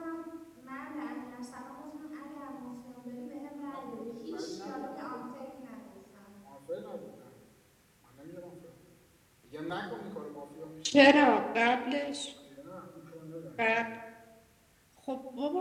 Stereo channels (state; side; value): identical; both; correlation 1.00